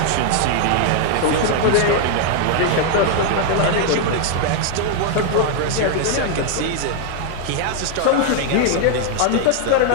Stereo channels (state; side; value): different; both; correlation 0.00